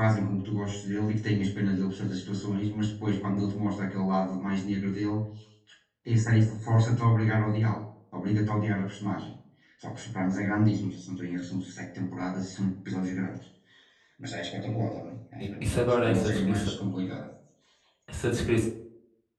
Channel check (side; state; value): both; identical; correlation 1.00